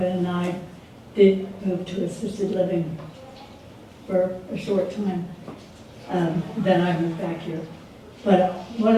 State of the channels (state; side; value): identical; both; correlation 1.00